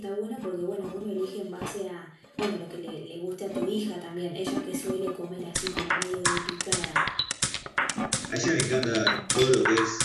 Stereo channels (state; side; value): identical; both; correlation 1.00